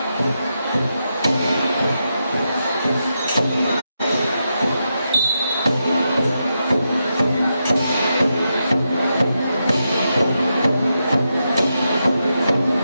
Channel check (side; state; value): both; inverted; correlation -0.85